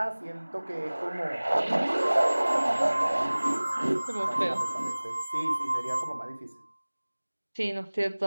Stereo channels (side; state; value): both; inverted; correlation -1.00